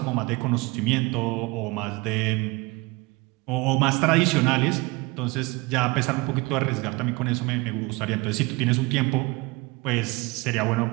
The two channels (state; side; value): quieter; left; 24.3 dB